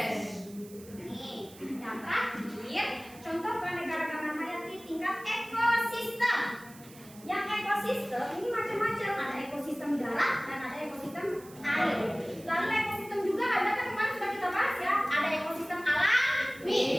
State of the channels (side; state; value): right; noise; hiss, 21 dB below the sound